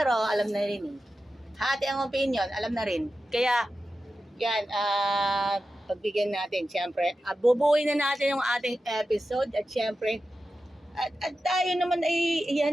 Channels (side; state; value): both; normal; correlation 0.92